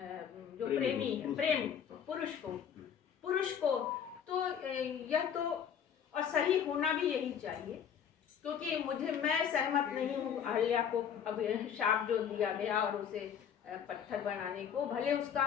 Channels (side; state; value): right; quieter; 8.2 dB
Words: जो प्रेमी है, प्रेम पुरुष को। तो यह तो और सही होना भी यही चाहिए, क्योंकि मैं सहमत नहीं हूँ अहल्या को अब शाप जो दिया गया और उसे पत्थर बनाने को, भले उसका